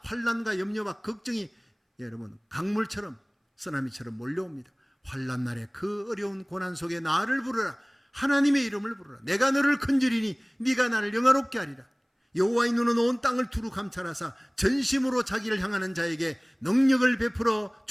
환난과 염려와 걱정이 여러분 강물처럼 쓰나미처럼 몰려옵니다. 환난 날에 그 어려운 고난 속에 나를 부르라. 하나님의 이름을 부르라. 내가 너를 건지리니 네가 나를 영화롭게 하리라. 여호와의 눈은 온 땅을 두루 감찰하사 전심으로 자기를 향하는 자에게 능력을 베풀어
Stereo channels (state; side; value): identical; both; correlation 1.00